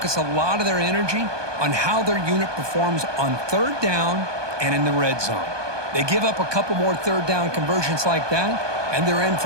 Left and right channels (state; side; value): late; left; 1.2 ms